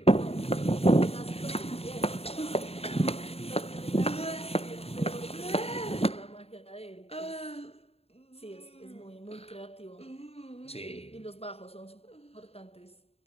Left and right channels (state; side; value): late; right; 0.29 ms